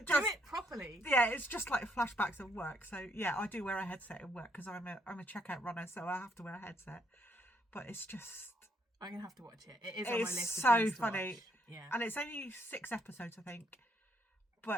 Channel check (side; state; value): both; normal; correlation 0.72